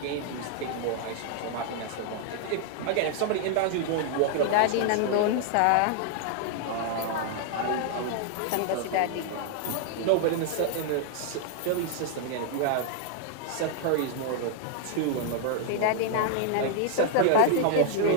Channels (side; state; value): both; different; correlation 0.00